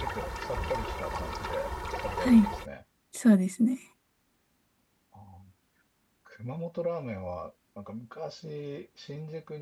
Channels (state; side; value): identical; both; correlation 1.00